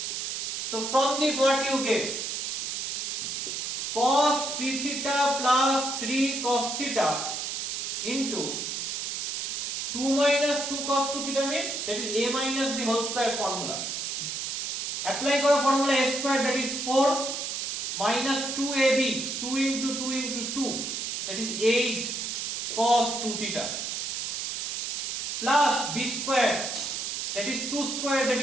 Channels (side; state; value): right; noise; hiss, 3 dB below the sound